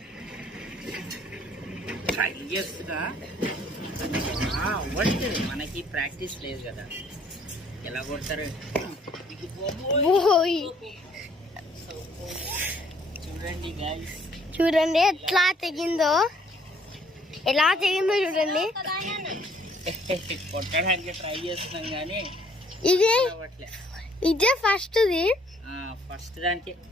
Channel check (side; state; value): both; normal; correlation 0.62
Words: మనకి ప్రాక్టీస్ లేదు కదా, ఎలా కొడతారు చూడండి గాయ్స్, చూడండి ఎట్లా తెగిందో చూడండి. కొట్టడానికి ట్రై చేస్తున్నాం కానీ ఇదే ఫస్ట్ దానికి